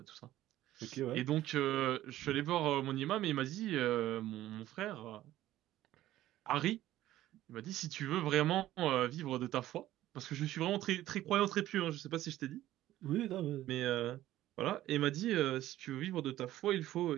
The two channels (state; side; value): quieter; left; 14.3 dB